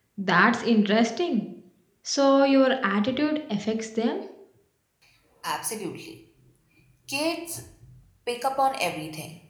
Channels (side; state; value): both; identical; correlation 1.00